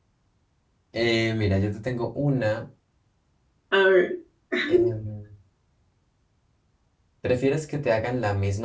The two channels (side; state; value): both; identical; correlation 1.00